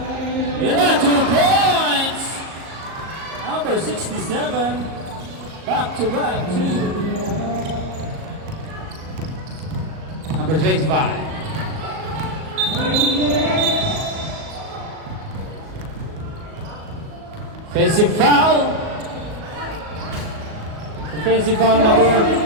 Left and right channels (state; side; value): late; left; 38 ms